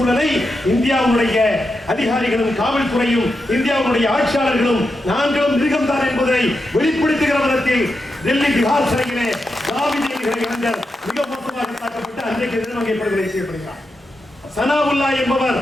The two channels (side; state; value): both; normal; correlation 0.87